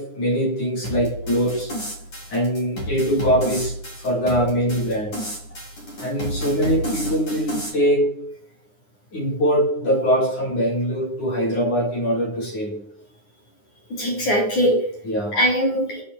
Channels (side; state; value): right; late; 9.7 ms